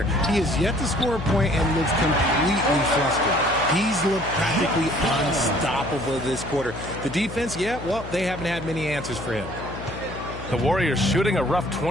He has yet to score a point and looks completely flustered. He's looked practically unstoppable this quarter. The defense, yeah, well, they haven't had many answers for him. The Warriors shooting a rough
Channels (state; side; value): noise; left; hum, 11 dB below the sound